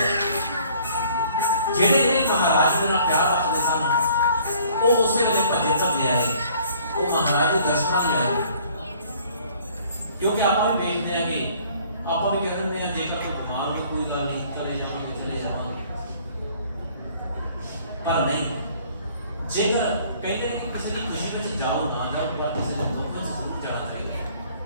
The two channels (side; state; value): both; inverted; correlation -0.57